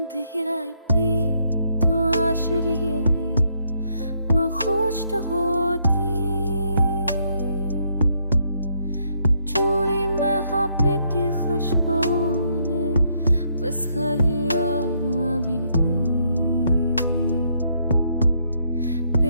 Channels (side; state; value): both; inverted; correlation -0.73